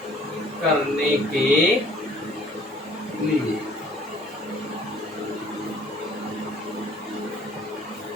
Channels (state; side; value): normal; both; correlation 0.56